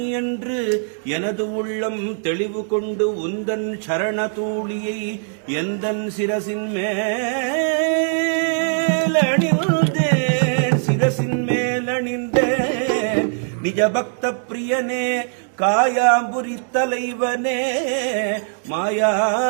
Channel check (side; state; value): left; silent; digital silence